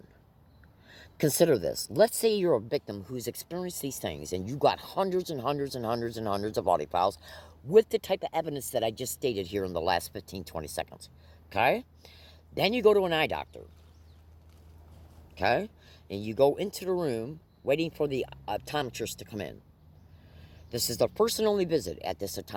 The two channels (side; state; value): both; identical; correlation 1.00